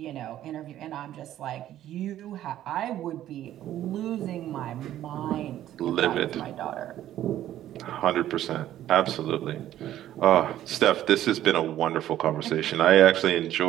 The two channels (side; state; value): left; quieter; 12.5 dB